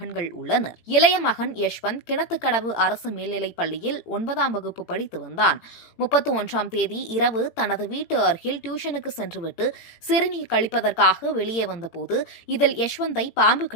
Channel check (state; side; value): late; right; 17 ms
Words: உள்ளனர். இளைய மகன் யஷ்வந்த் கிணத்துக்கடவு அரசு மேல்நிலைப் பள்ளியில் 9ஆம் வகுப்பு படித்து வந்தான். 31ஆம் தேதி இரவு தனது வீட்டு அருகில் டியூஷனுக்கு சென்றுவிட்டு சிறுநீர் கழிப்பதற்காக வெளியே வந்தபோது இதில் யஷ்வந்தை பாம்பு